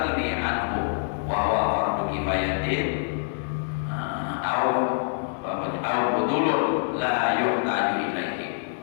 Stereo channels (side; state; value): right; silent; digital silence